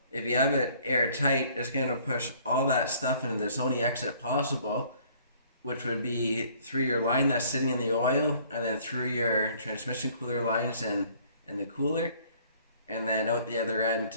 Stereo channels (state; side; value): inverted; both; correlation -0.58